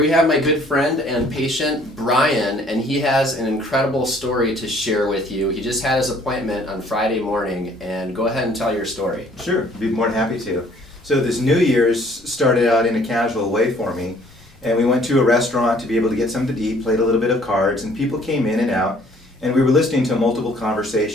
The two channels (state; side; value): normal; both; correlation 0.58